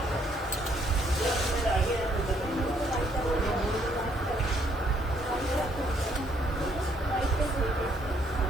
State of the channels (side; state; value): both; normal; correlation 0.69